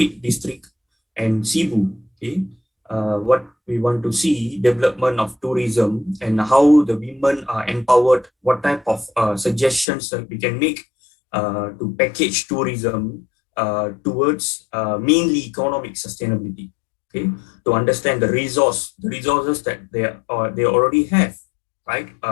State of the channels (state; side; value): drops out; right; at 9.9 s